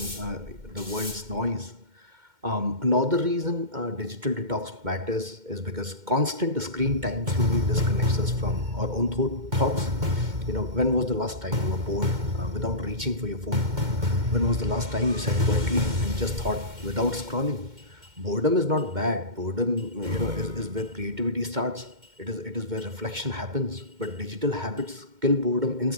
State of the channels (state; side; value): late; left; 2.1 ms